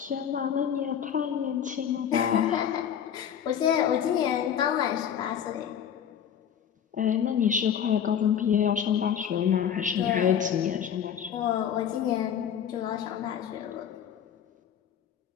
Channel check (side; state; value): right; quieter; 8.8 dB